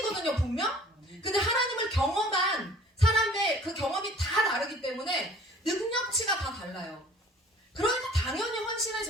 분명? 근데 하나님을 경험한 사람의 그 경험이 다 다르기 때문에 능력치가 다 달라요. 그러니까 당연히 헌신의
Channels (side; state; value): both; normal; correlation 0.50